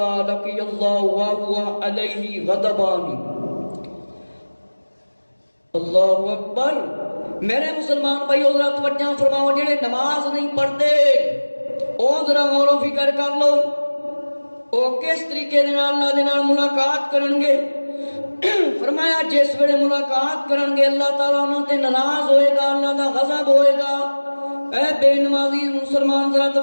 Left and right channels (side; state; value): both; inverted; correlation -1.00